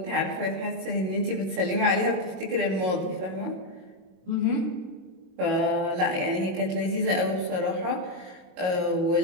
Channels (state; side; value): late; left; 22 ms